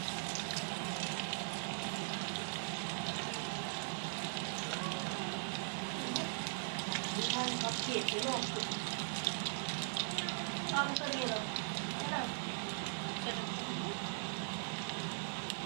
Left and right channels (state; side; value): silent; left; digital silence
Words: সব খেয়েছিল বাবুকে দিয়ে দাও।